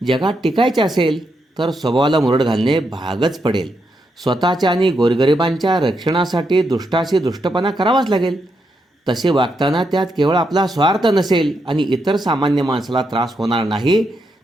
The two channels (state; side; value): normal; both; correlation 0.82